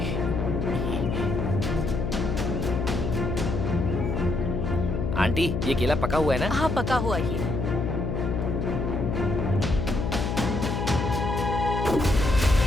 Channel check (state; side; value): noise; left; hum, 1 dB below the sound